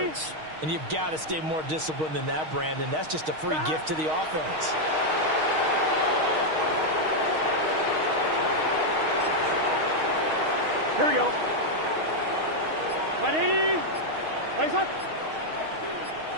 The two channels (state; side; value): late; left; 6.4 ms